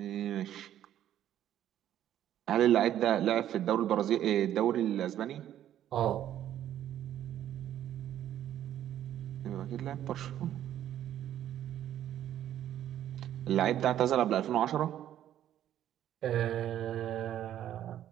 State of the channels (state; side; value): quieter; left; 11.5 dB